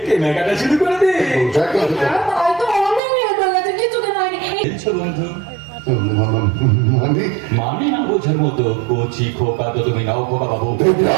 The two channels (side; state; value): left; drops out; at 3.0 s